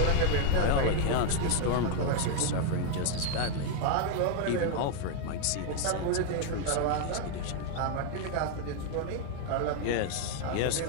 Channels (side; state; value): both; different; correlation 0.01